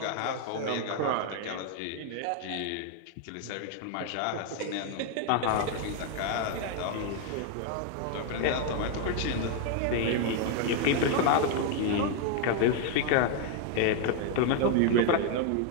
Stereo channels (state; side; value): different; both; correlation 0.00